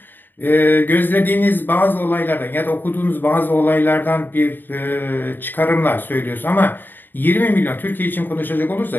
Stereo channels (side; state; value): right; late; 0.093 ms